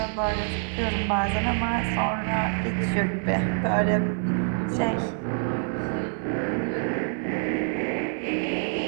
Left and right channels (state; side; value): silent; left; 61 dB below the other